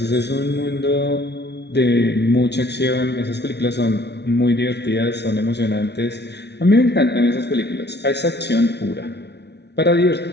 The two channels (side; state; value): right; late; 0.50 ms